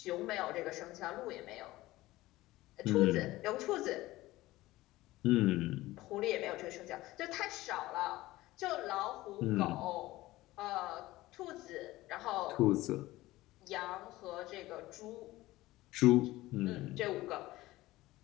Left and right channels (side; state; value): right; quieter; 17.8 dB